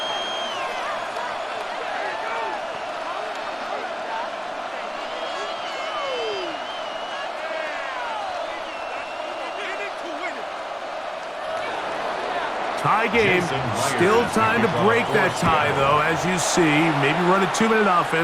Tie game. Still time to break that tie, though, as you see. Maybe run a 2-minute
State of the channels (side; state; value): both; identical; correlation 1.00